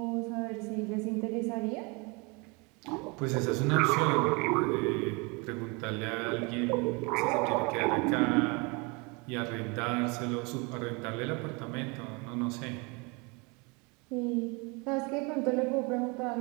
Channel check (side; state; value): left; quieter; 29.2 dB